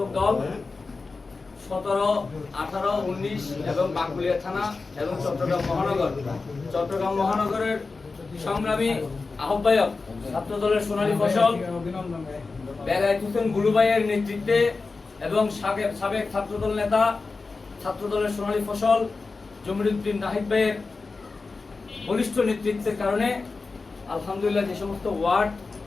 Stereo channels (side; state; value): right; quieter; 4.1 dB